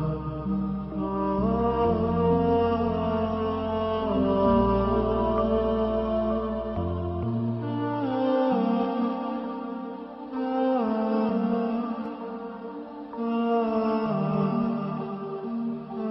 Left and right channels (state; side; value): identical; both; correlation 1.00